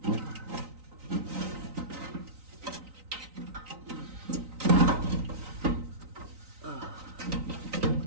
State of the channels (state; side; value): late; left; 3.9 ms